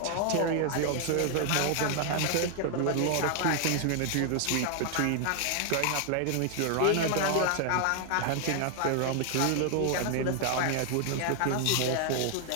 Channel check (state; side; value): different; both; correlation 0.00